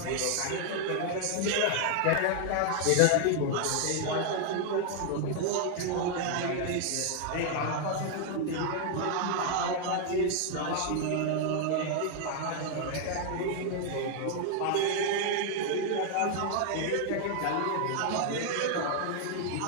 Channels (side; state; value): both; different; correlation 0.00